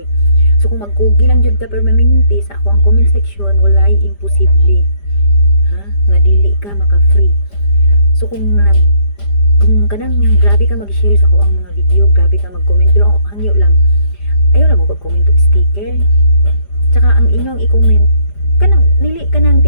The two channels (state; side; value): late; right; 5.0 ms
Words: So kung magkugi lang jud ka permanente sa ako ang comment section, walay imposible. Ha? Nga dili ka maka-free. So kung kanang grabe ka mag-share sa ako ang mga video, grabe ka mag-comment, pero hangyo lang. Ayaw lang mo pag-comment og sticker. Tsaka ang inyong i-comment, kanang dili kanang